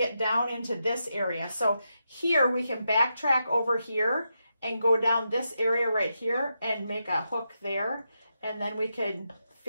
down into this area. So here we can backtrack over here and go down this area right here and make a hook there. And then we can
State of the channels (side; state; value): both; inverted; correlation -0.85